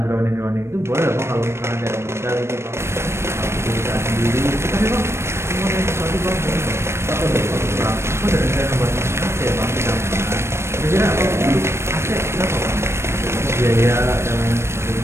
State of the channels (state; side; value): late; left; 0.13 ms